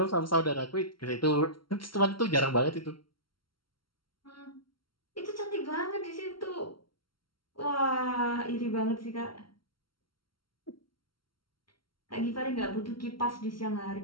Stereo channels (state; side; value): late; right; 0.73 ms